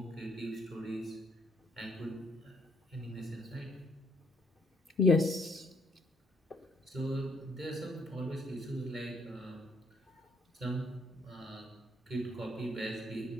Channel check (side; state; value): both; normal; correlation 0.68